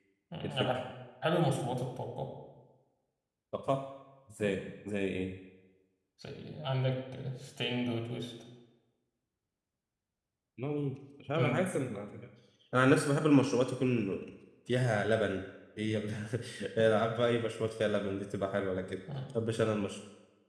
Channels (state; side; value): identical; both; correlation 1.00